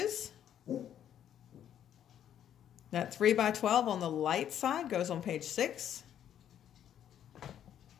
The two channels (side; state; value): right; quieter; 10.1 dB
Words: That 3x12 on the light side goes on page 6.